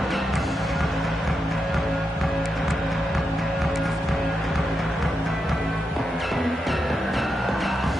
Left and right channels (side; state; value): both; normal; correlation 0.86